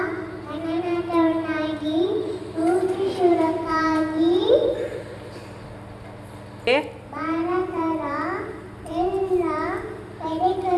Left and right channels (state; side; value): identical; both; correlation 1.00